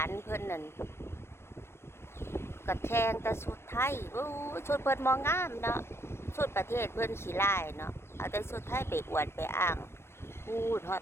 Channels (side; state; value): right; late; 0.12 ms